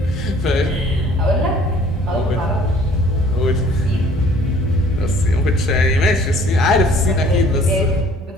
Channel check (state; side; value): normal; both; correlation 0.55